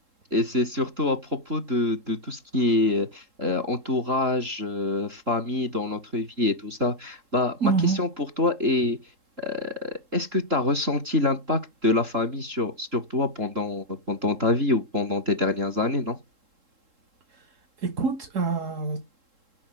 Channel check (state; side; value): late; left; 3.7 ms